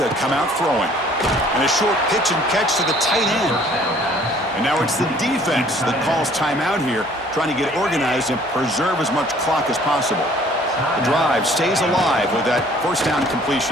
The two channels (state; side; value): normal; both; correlation 0.56